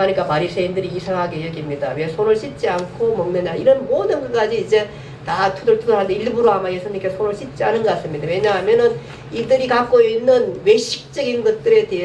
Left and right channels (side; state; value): both; identical; correlation 1.00